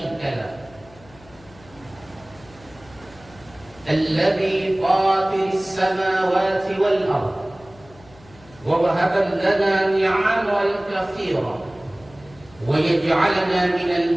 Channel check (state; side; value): noise; left; hum, 24 dB below the sound